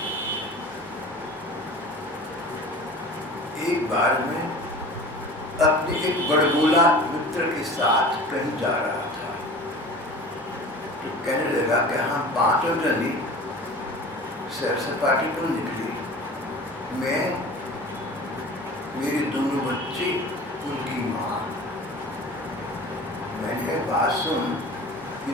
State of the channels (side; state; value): both; normal; correlation 0.39